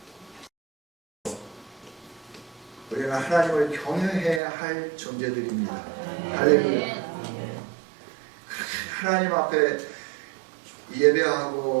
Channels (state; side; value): drops out; left; at 4.4 s